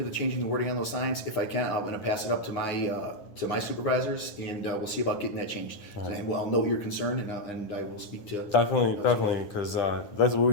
the changing the wording on those signs if I can. I'm going to pass it up to my supervisors, and we'll see about getting that changed. And I'll note your concern, and I will speak to Definitely, because that's what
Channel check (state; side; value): late; right; 9.8 ms